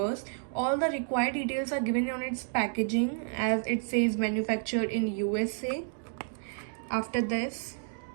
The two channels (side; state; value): left; silent; 57 dB below the other